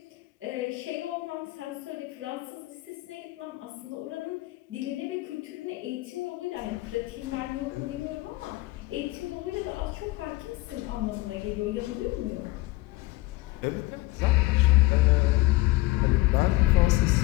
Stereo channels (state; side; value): quieter; right; 20.5 dB